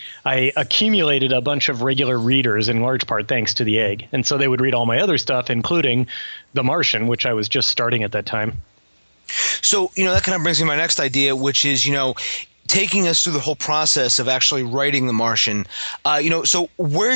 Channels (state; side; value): inverted; both; correlation -1.00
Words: accumulated a bunch of regular readers in large part thanks to the egg, and so they would read all my other stuff, including The Martian, which I was just starting at that time. So, that kind of brings me to my next idea, which is, taking us through the whole process of actually writing The Martian. So where